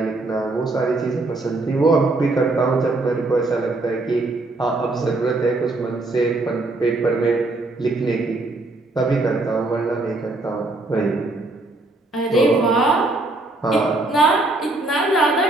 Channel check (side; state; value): left; quieter; 3.0 dB